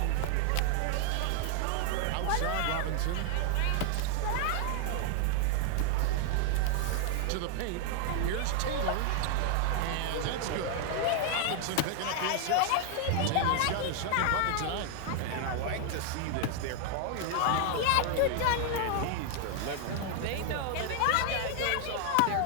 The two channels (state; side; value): different; both; correlation 0.00